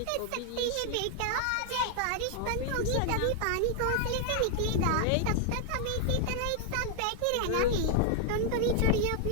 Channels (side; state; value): both; different; correlation 0.00